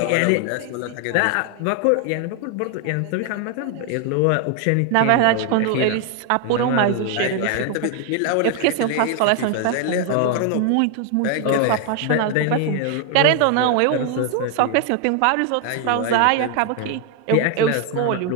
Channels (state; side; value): different; both; correlation 0.00